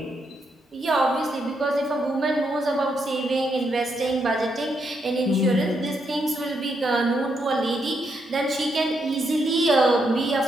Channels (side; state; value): both; normal; correlation 0.79